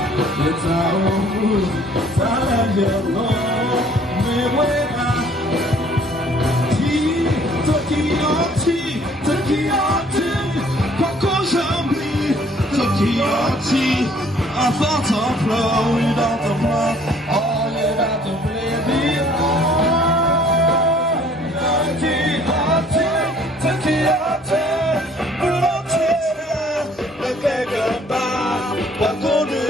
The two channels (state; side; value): normal; both; correlation 0.58